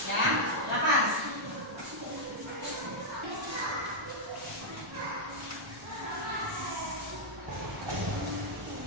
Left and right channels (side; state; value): left; noise; rumble, 24 dB below the sound